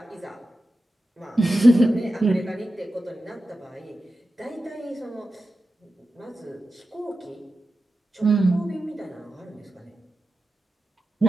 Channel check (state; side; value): normal; both; correlation 0.93